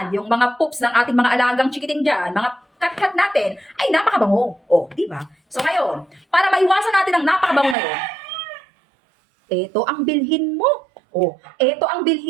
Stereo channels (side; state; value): left; drops out; at 7.8 s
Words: yung mga poops ng ating mga alagang chikiting dyan, mga kat-kat natin, ay napakabango. O, di ba? So ngayon, para maiwasan natin ang napakabango na yun, eto ang bilhin mo. O, eto ang